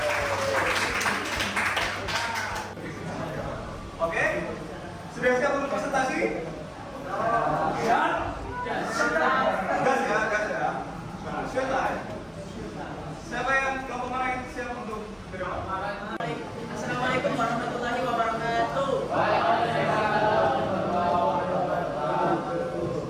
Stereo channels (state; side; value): identical; both; correlation 1.00